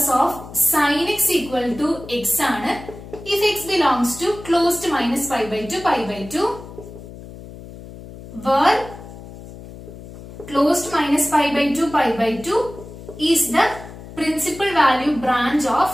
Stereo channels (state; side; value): noise; left; hum, 15 dB below the sound